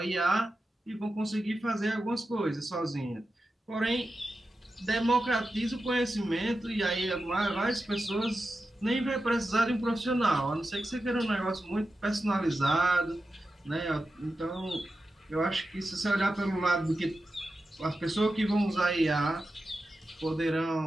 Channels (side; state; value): both; normal; correlation 0.91